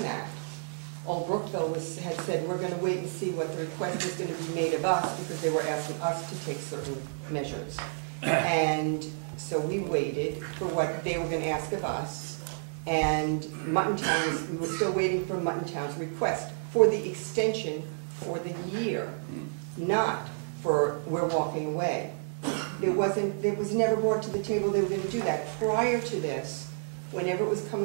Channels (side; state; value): left; silent; digital silence